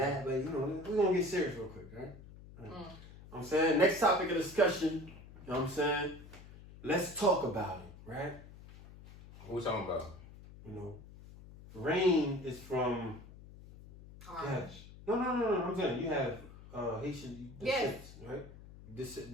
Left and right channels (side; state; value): left; noise; hum, 18 dB below the sound